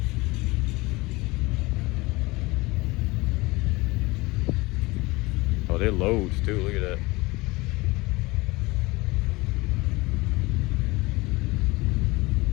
Oh, they're loads too, look at that.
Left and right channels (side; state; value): right; quieter; 22.6 dB